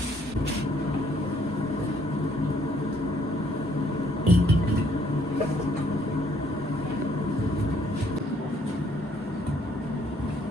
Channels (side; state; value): both; normal; correlation 0.66